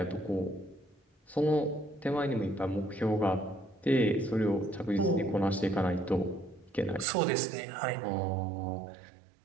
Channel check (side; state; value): left; drops out; at 7.1 s